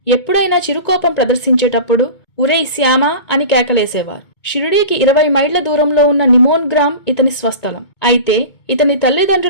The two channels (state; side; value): late; right; 2.2 ms